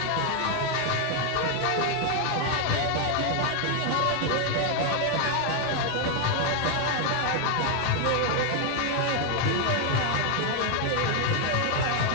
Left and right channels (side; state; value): both; different; correlation 0.00